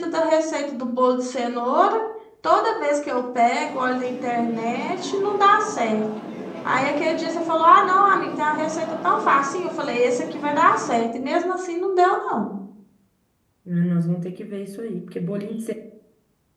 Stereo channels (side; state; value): both; identical; correlation 1.00